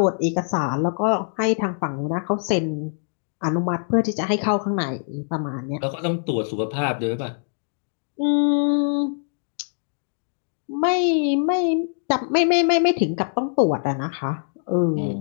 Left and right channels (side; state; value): right; silent; 62 dB below the other